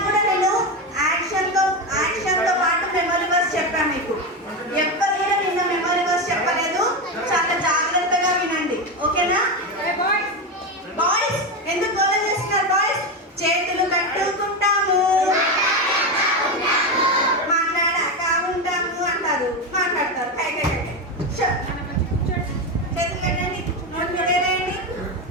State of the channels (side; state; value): both; normal; correlation 0.14